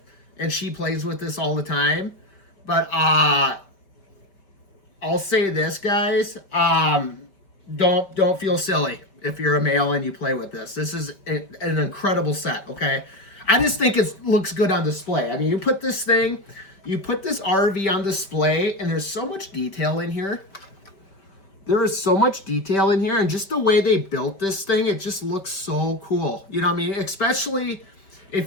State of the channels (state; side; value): late; right; 5.2 ms